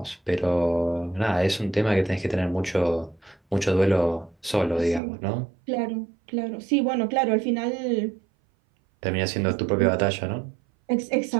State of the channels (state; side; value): drops out; left; at 5.0 s